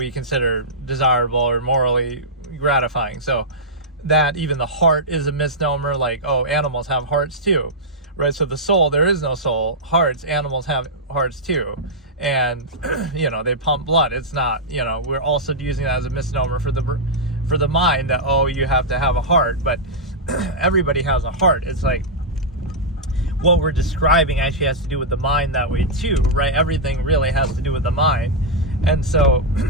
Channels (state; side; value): normal; both; correlation -0.09